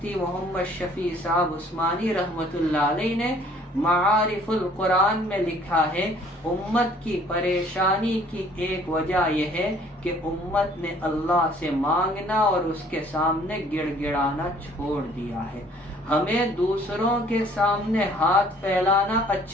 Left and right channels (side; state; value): both; normal; correlation 0.57